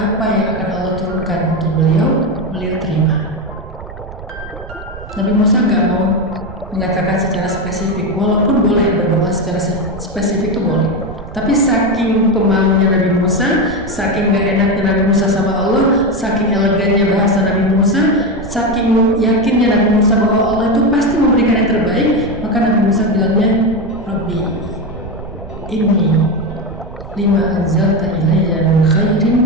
yang akan Allah turunkan untuk beliau terima. Nabi Musa nggak mau mengatakan secara spesifik, walaupun boleh berdoa secara spesifik itu boleh. Tapi saking pemalunya Nabi Musa, saking gak enaknya Nabi Musa sama Allah, saking elegannya bahasa Nabi Musa, saking yakinnya Nabi Musa bahwa Allah itu pasti memberikan yang terbaik, maka Nabi Musa bilangnya, Rabbi, inni lima anzalta ilayya min khairin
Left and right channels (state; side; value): noise; right; rumble, 13 dB below the sound